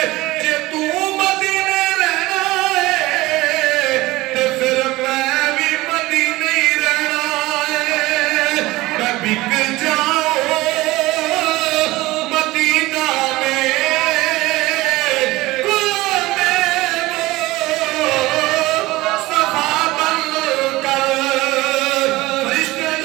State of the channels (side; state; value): left; quieter; 19.3 dB